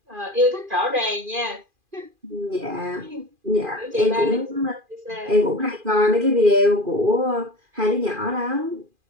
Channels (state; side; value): late; left; 2.4 ms